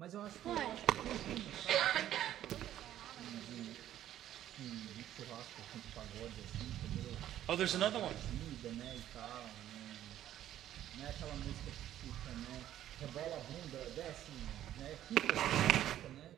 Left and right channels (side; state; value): left; quieter; 12.1 dB